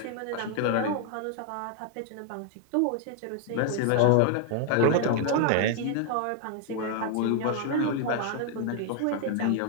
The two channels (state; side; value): different; both; correlation 0.00